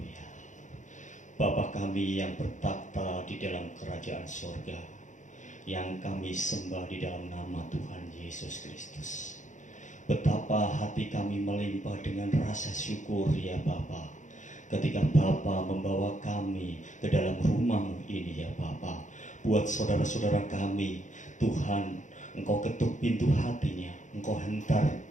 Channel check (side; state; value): right; late; 0.36 ms